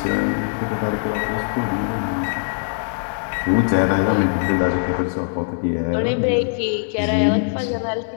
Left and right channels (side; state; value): right; silent; digital silence